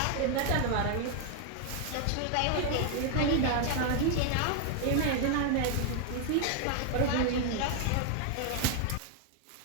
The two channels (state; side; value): different; both; correlation 0.00